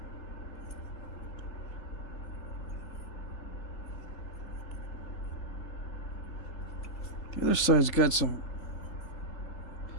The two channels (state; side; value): late; right; 3.8 ms